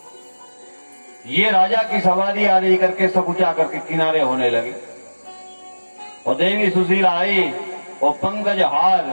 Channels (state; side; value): inverted; both; correlation -1.00